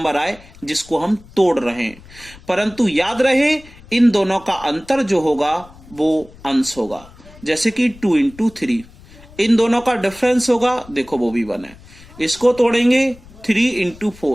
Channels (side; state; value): left; noise; rumble, 22 dB below the sound